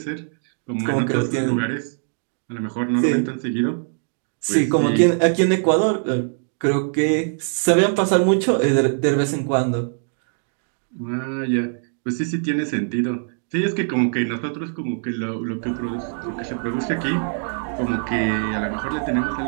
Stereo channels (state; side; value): silent; left; 64 dB below the other